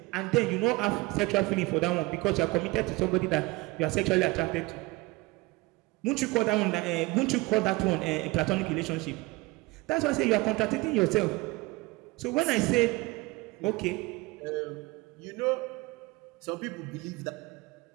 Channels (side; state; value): left; quieter; 22.3 dB